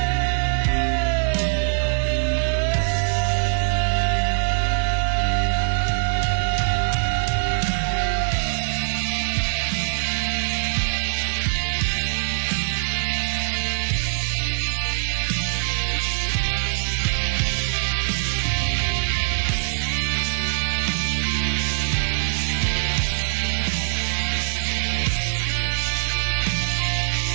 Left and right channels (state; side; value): silent; left; digital silence